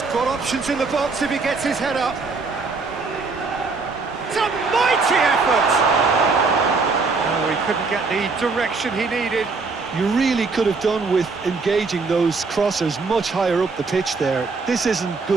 got options in the box if he gets his head up. It's a mighty effort! Oh, he couldn't get the direction he needed. You really could have done with engaging those crossers much higher up the pitch there. This isn't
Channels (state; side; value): quieter; left; 4.3 dB